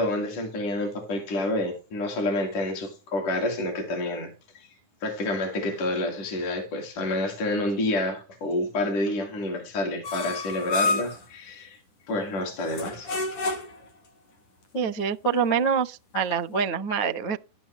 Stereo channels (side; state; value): right; late; 10 ms